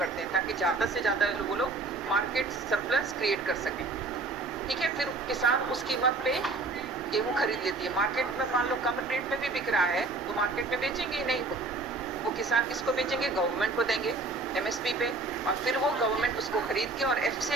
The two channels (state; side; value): quieter; left; 3.5 dB